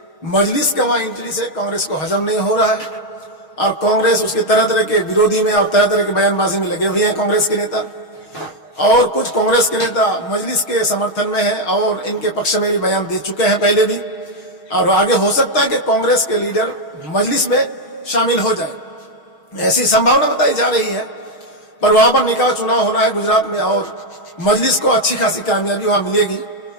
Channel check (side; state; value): right; late; 6.4 ms